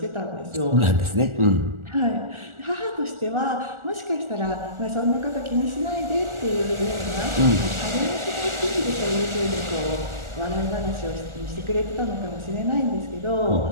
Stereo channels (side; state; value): left; late; 1.4 ms